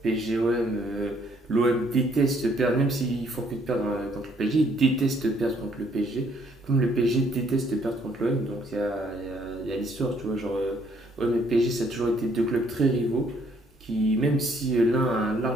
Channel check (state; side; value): normal; both; correlation 0.66